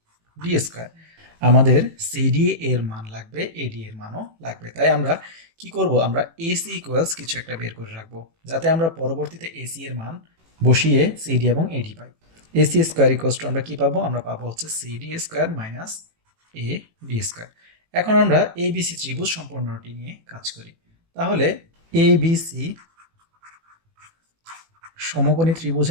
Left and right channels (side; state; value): left; late; 18 ms